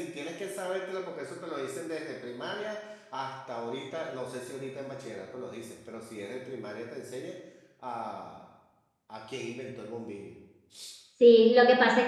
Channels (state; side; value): identical; both; correlation 1.00